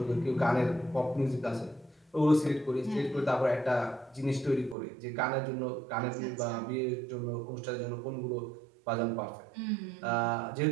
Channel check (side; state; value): left; drops out; at 4.8 s